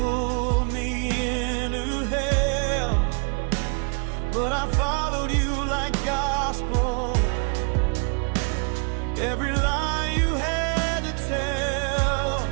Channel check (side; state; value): left; quieter; 39.4 dB